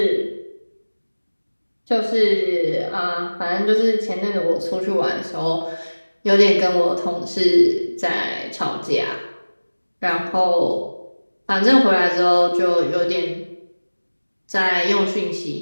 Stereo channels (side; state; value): both; inverted; correlation -1.00